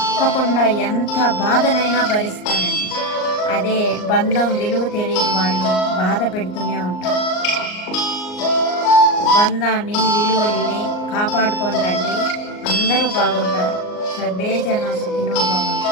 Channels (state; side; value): late; right; 38 ms